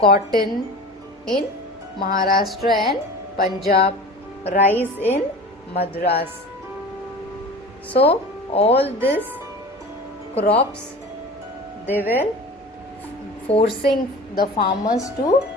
cotton in Maharashtra and Punjab, rice in Madras. So all these crops, they were forcing the farmers to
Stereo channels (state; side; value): normal; both; correlation 0.37